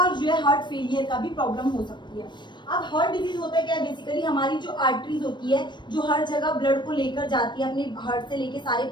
जो है हार्ट फेलियर का भी प्रॉब्लम हो सकती है। अब हार्ट डिजीज होता है क्या, बेसिकली हमारी जो आर्टरीज होती है, जो हर जगह ब्लड को लेकर जाती है अपने हार्ट से लेके सारे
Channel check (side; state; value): right; late; 0.22 ms